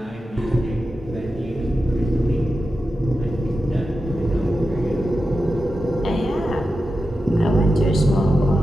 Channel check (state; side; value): normal; both; correlation 0.91